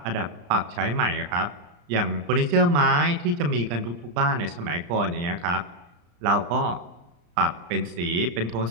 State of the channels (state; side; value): late; left; 34 ms